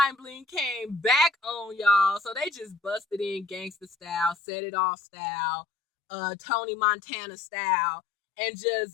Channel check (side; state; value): right; drops out; at 4.4 s